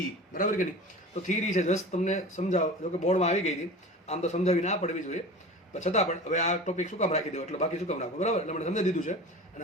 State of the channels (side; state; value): both; normal; correlation 0.35